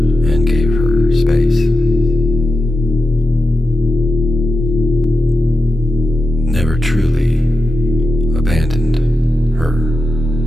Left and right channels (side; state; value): both; normal; correlation 0.90